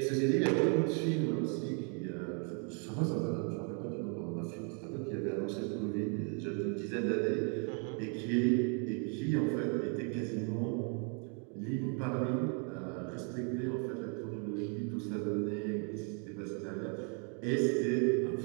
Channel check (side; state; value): left; quieter; 39.5 dB